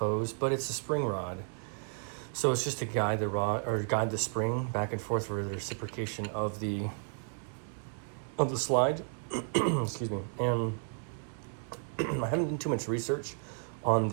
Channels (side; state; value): left; silent; 56 dB below the other